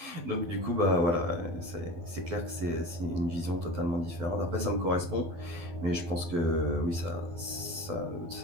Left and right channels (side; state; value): left; late; 12 ms